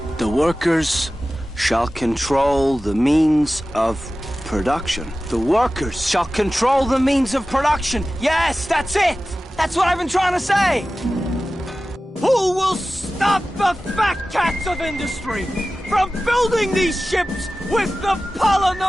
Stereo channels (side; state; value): both; normal; correlation 0.95